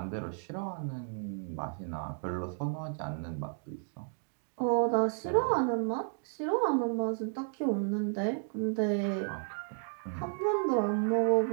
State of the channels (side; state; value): left; silent; 56 dB below the other